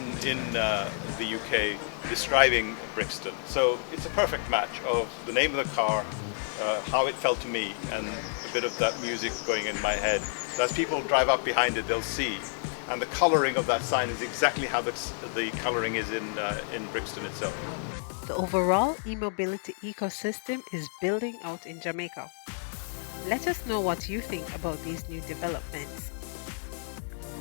in the UK describing Brixton. So it's a perfect match of the name of the car, how it felt to me, and a bit of that music going in my head. So as people drive up behind it, they'll see. And the colouring of that sign is exactly how the colouring is in Brixton itself. The overall e-mobility ecosystem is building out in Jamaica. Let us know what you think about these new developments.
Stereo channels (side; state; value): right; silent; digital silence